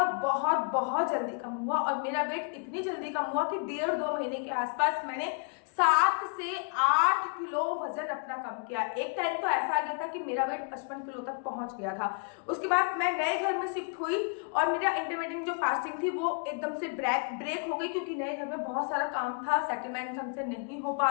बहुत बहुत जल्दी कम हुआ, और मेरा वेट इतनी जल्दी कम हुआ कि 1.5-2 महीने के आसपास मैंने 7 से 8 किलो वजन अपना कम किया। एक टाइम तो ऐसा आ गया था कि मेरा वेट 55 किलो तक पहुंच गया था। उसके बाद मैं नए घर में शिफ्ट हुई और मेरा इंटरमीडिएट जो फास्टिंग थी वो एकदम से ब्रेक हो गई, क्योंकि नए घर में बहुत सारा काम था, सेटलमेंट ढंग से नहीं हो पा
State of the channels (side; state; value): right; quieter; 37.9 dB